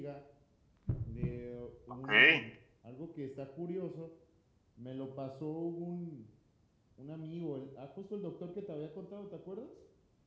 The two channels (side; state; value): both; identical; correlation 1.00